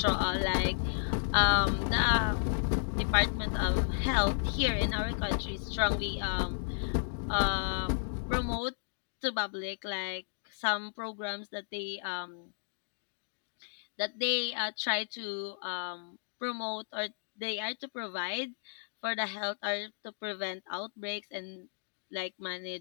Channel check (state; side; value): silent; right; digital silence